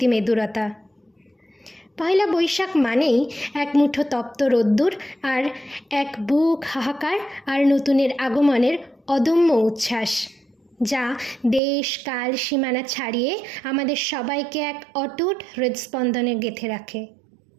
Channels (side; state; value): left; drops out; at 11.6 s